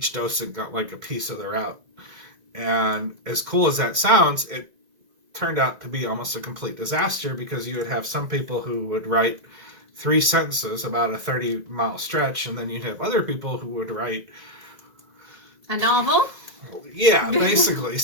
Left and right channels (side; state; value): left; late; 1.9 ms